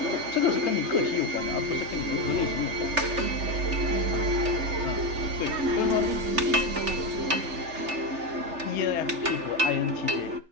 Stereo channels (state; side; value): late; left; 3.4 ms